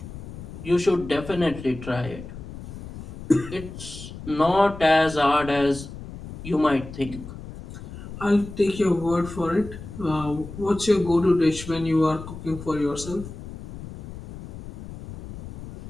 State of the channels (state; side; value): noise; left; rumble, 12 dB below the sound